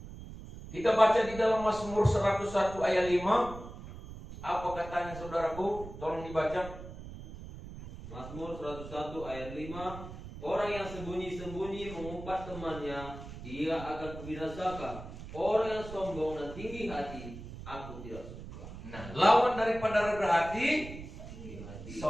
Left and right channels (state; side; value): noise; right; rumble, 12 dB below the sound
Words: kita baca di dalam Mazmur 101 ayat 5. Apa katanya saudaraku? Tolong dibaca. Mazmur 101 ayat 5. Orang yang sembunyi-sembunyi mengumpat temannya, dia akan kubinasakan. Orang yang sombong dan tinggi hati, aku tidak suka. Nah, lawan daripada rendah hati,